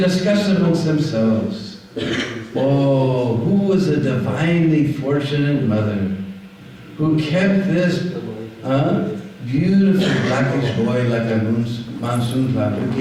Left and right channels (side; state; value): both; identical; correlation 1.00